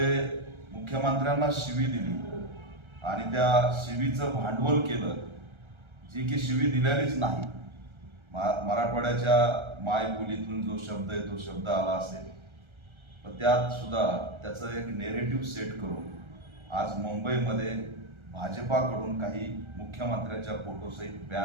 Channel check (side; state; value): left; late; 1.3 ms